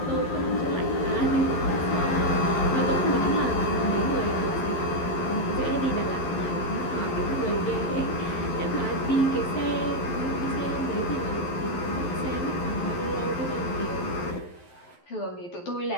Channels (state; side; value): late; right; 11 ms